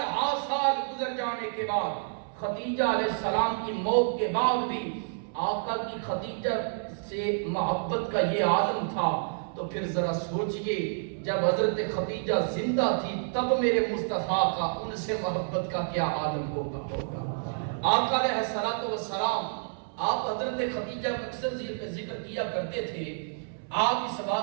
ہا سال گزر جانے کے بعد، خدیجہ علیہ السلام کی موت کے بعد بھی آقا کی خدیجہ سے محبت کا یہ عالم تھا، تو پھر ذرا سوچئے جب حضرت خدیجہ زندہ تھی تب میرے مصطفیٰ کا ان سے محبت کا کیا عالم ہوگا۔ آقا علیہ السلام آپ حضرت خدیجہ کا اکثر ذکر کیا کرتے تھے، آپ اس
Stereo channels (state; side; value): silent; left; 58 dB below the other